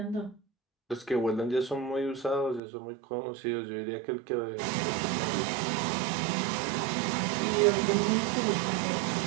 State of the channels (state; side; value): drops out; left; at 2.6 s